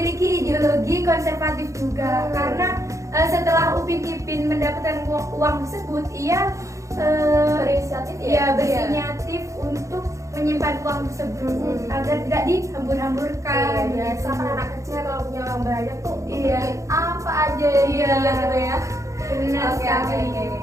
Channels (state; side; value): late; left; 0.15 ms